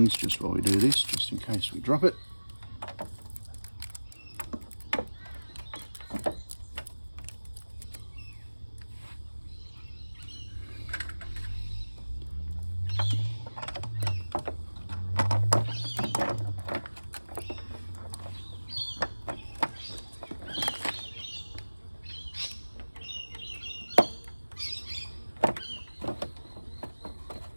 just while we do this, just in case we drop it.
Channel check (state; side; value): inverted; both; correlation -1.00